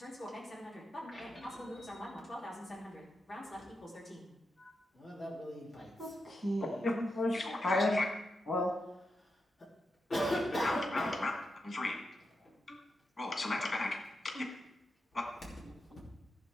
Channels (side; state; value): both; normal; correlation 0.87